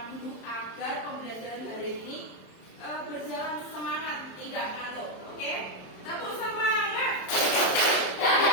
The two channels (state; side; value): late; right; 27 ms